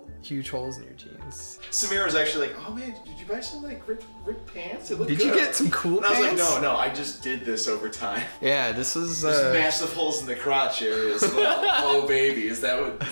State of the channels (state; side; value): inverted; both; correlation -1.00